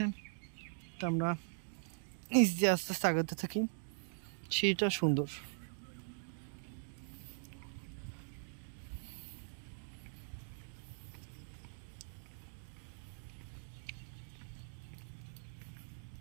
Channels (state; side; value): silent; left; digital silence